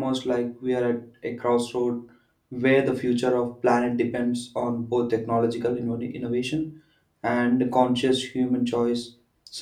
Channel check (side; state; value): both; identical; correlation 1.00